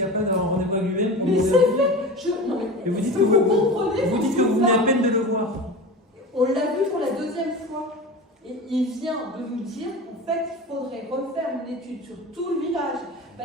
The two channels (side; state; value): both; normal; correlation 0.31